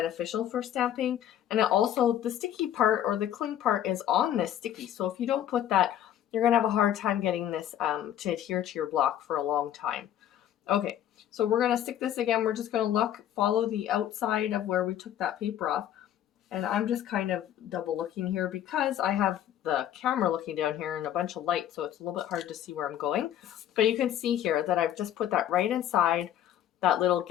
for stamping. And it also, the sticky part or the cling part is on this sticky. So if you don't put that, you're going to have a hard time getting this to adhere to your block for a long time. Okay, so we're going to stick this again. We're just going to follow the outside of where we took that paper off. And I'm just kind of double looking here because I have the camera looking down here and a bunch of light, so it's a little bit hard to see where I'm going. But you can see here that I've just put that right inside that little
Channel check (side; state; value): right; quieter; 11.2 dB